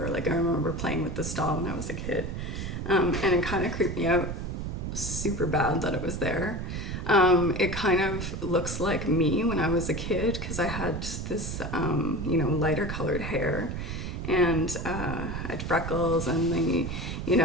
Like I remember playing with this doll when I was a kid. And it kind of creeped me out super bad that it was there. It kind of looks like me when I was a kid because I had this, you know, lighter colored hair, and I had freckles, and the, you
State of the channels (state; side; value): noise; right; rumble, 5 dB below the sound